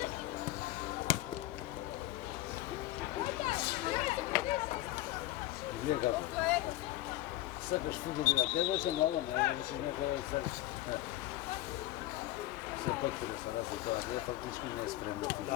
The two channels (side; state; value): right; quieter; 15.7 dB